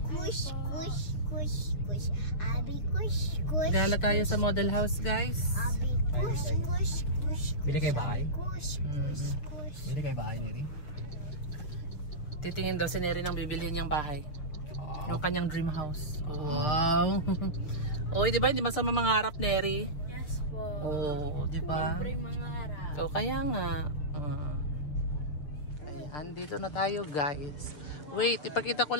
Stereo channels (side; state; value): right; late; 6.6 ms